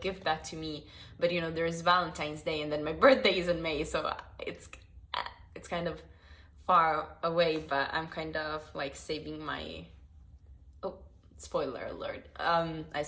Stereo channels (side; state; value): both; identical; correlation 1.00